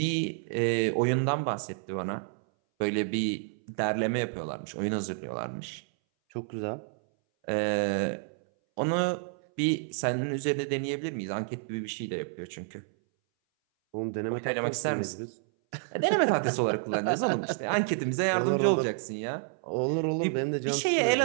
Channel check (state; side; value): silent; left; 58 dB below the other